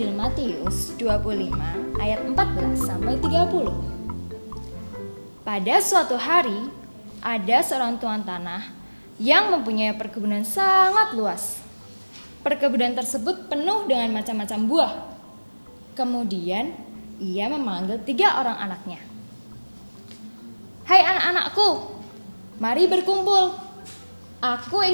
Matius 25 ayat 14 sampai 30. Pada suatu hari, ada seorang tuan tanah yang mempunyai perkebunan sangat luas. Perkebunan tersebut penuh dengan macam-macam buah. Kemudian ia memanggil 3 orang anaknya. Hai anak-anakku, mari berkumpul. Aku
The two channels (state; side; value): inverted; both; correlation -1.00